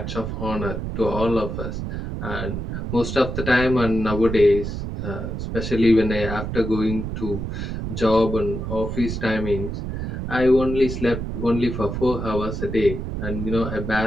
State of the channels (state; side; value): noise; right; rumble, 4 dB below the sound